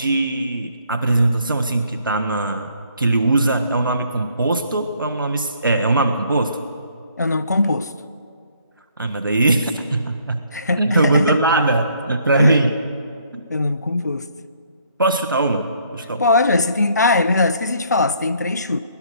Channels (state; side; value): inverted; both; correlation -0.66